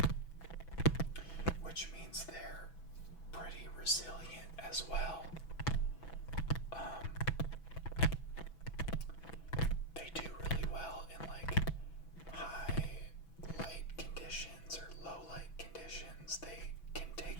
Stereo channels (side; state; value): right; late; 6.1 ms